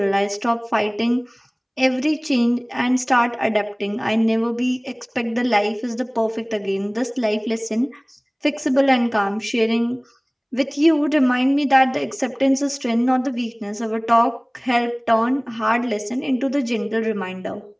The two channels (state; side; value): identical; both; correlation 1.00